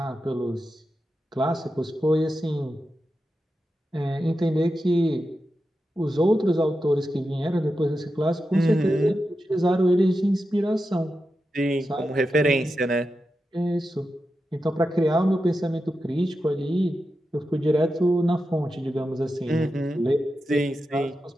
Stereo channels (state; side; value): normal; both; correlation 0.90